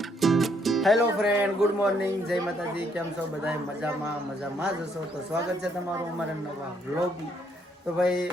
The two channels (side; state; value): both; normal; correlation 0.70